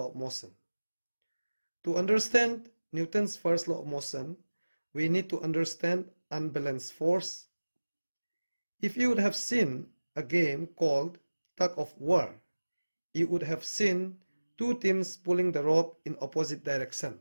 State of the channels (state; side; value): inverted; both; correlation -1.00